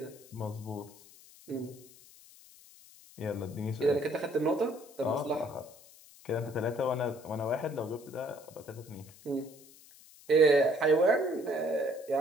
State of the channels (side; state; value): left; noise; hiss, 22 dB below the sound